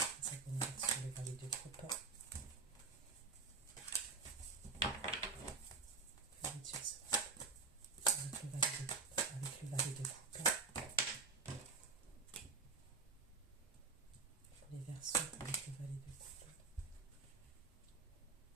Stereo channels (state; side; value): quieter; left; 4.7 dB